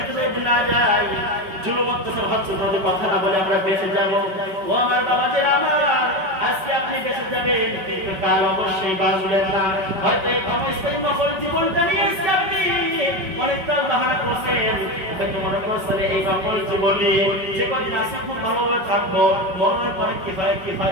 না যাই, জুলুম অত্যাচার হচ্ছে ভাবে কথা না বলে আমরা বেঁচে যাব। ও আমার বাবা যে আমার, আজকে আপনি বেঁচে যাবেন, কিন্তু কাল অবশ্যই বাঁচবেন না। হয়তো এই ক্ষমস্থায়ী নকল জীবনটা নিয়ে আজকে আপনি অনেকটা বাহানা করছেন, হয়তো মনে করছেন এই নকল জীবন নিয়ে যে কদিন আছে খুব ভালোভাবে থাকবো, মরণের পরে কি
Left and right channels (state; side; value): late; left; 5.3 ms